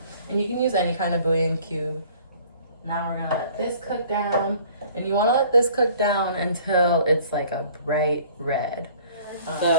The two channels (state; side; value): inverted; both; correlation -0.52